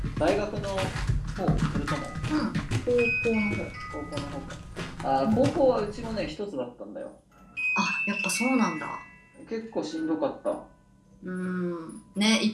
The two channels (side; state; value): both; identical; correlation 1.00